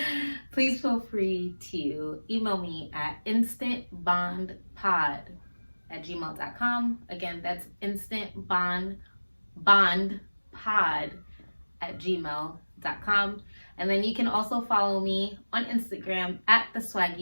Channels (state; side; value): inverted; both; correlation -1.00